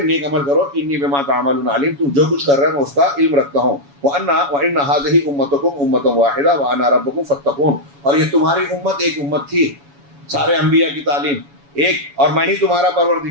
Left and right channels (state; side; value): late; left; 7.1 ms